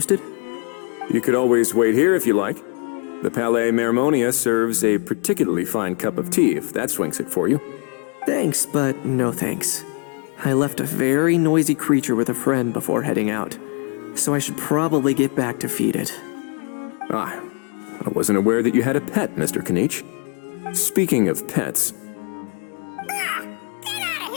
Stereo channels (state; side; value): quieter; right; 37.3 dB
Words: You could always wait here if you like. The Palais Mermonia serves a particularly fine cup of tea, if that swings it for you. Thanks, but no thanks. I left a very noisy creature with a friend before heading out, so I should probably get back to feed it. Ah, I wasn't aware that you had a pet, Mr. Kanich. Speaking of pets... Get out of